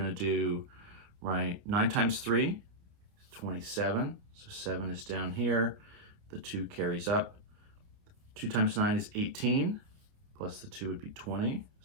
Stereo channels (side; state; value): left; late; 29 ms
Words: to do, right, 9 times 3, 27. So 7 is down here. The 2 carries up. 2 times 9 is 18. Plus the 2 would be 20.